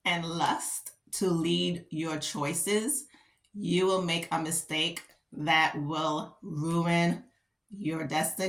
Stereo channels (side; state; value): both; identical; correlation 1.00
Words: and lust to lead your choices, you will make a mistake that will ruin your